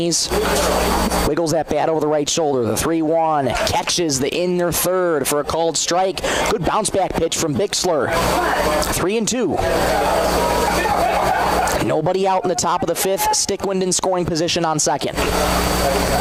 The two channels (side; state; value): both; identical; correlation 1.00